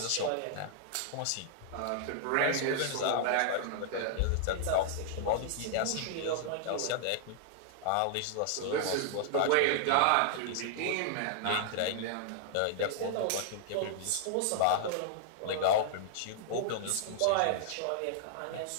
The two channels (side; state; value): both; different; correlation -0.01